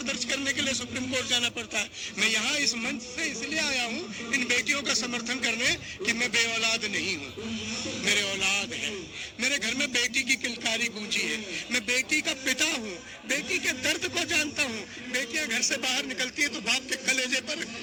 दर्ज करने के लिए सुप्रीम कोर्ट जाना पड़ता है। मैं यहाँ इस मंच से इसलिए आया हूँ इन बेटियों का समर्थन करने कि मैं बेऔलाद नहीं हूँ, मेरे औलाद है, मेरे घर में बेटी की किलकारी गूंजी है, मैं बेटी का पिता हूँ, बेटी के दर्द को जानता हूँ। बेटियां घर से बाहर निकलती है तो बाप के कलेजे पर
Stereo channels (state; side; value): identical; both; correlation 1.00